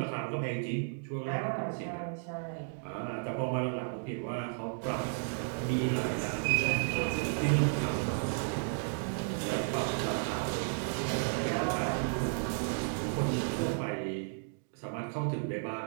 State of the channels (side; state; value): left; silent; digital silence